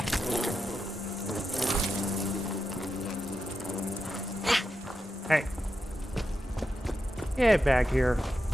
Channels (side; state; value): both; normal; correlation 0.88